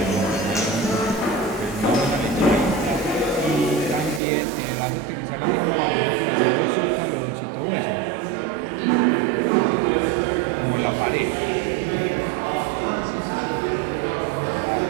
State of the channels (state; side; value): drops out; left; at 4.2 s